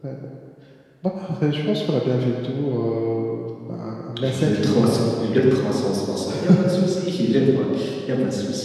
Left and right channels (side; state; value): both; identical; correlation 1.00